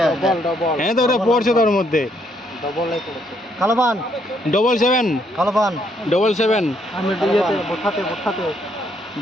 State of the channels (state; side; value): normal; both; correlation 0.72